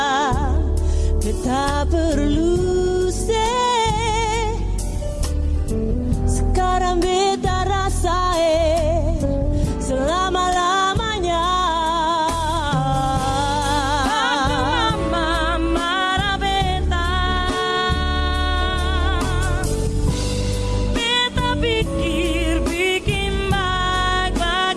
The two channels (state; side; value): identical; both; correlation 1.00